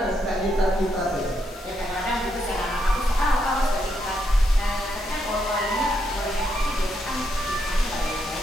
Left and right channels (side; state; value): both; normal; correlation 0.79